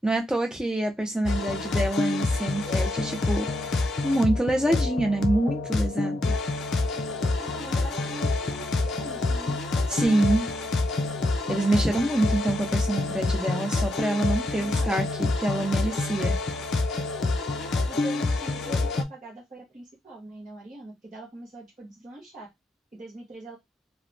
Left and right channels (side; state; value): both; normal; correlation 0.82